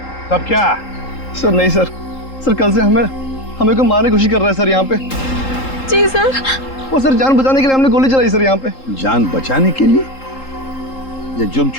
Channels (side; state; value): right; late; 3.8 ms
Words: तब क्या? सर नहीं सर, सर कल से हमें को मारने की कोशिश कर रहा है सर यहाँ पे। जी सर। वो सर जान बचाने के लिए हमने गोली चलाई सर यहाँ पे। जान बचाने के लिए या जुर्म